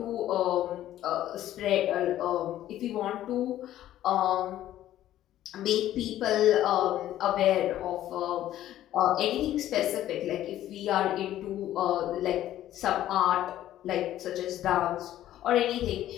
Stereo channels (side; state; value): right; quieter; 13.0 dB